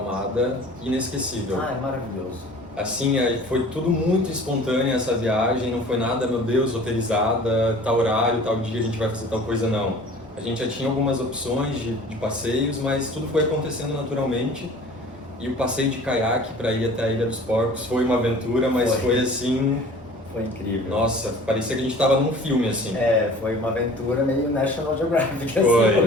inesquecível. É maravilhoso. Assim, foi tudo muito espontâneo essa viagem, não foi nada, meu Deus, roteirizada, tal horário, tal dia a gente vai fazer tal coisa, não. A gente já tinha algumas opções de passeios, mas tudo foi acontecendo naturalmente. E o passeio de caiaque para ir até a Ilha dos Porcos foi uma aventura, mas foi assim... Foi incrível. Nossa, parecia que a gente estava num filme, assim. Foi uma aventura meio National Geographic, Foi. assim,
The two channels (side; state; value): both; normal; correlation 0.45